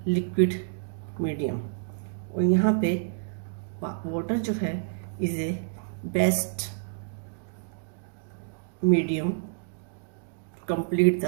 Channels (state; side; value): silent; left; digital silence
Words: liquid medium। और यहाँ पे वाटर जो है is a best medium complete